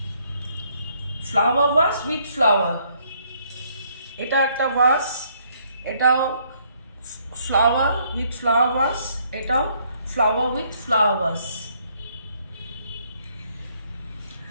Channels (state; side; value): inverted; both; correlation -0.68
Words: ফ্লাওয়ার ভাস উইথ ফ্লাওয়ার। এটা একটা ভাস, এটাও ফ্লাওয়ার উইথ ফ্লাওয়ার ভাস, এটাও ফ্লাওয়ার উইথ ফ্লাওয়ার ভাস।